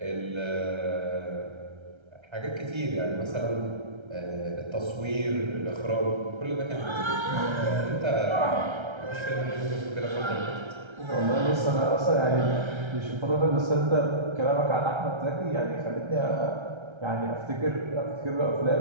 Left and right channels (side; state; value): left; late; 1.3 ms